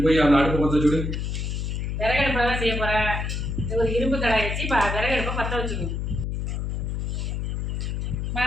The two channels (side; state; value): left; noise; hum, 2 dB below the sound